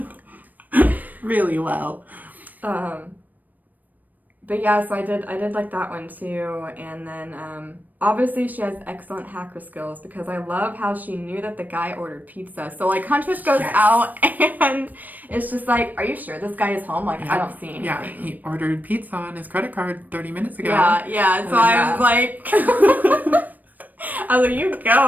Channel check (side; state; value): left; late; 0.084 ms